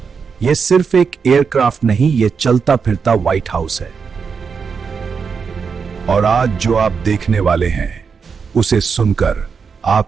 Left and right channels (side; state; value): left; quieter; 5.8 dB